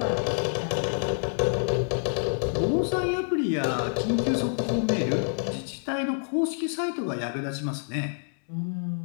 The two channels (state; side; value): silent; right; digital silence